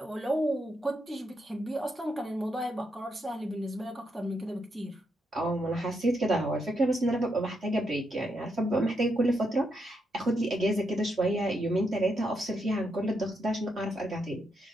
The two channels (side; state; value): both; normal; correlation 0.80